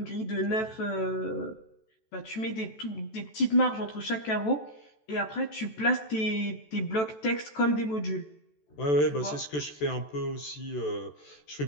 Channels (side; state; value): right; late; 14 ms